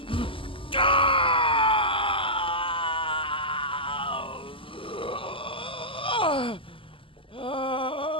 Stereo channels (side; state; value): right; late; 0.25 ms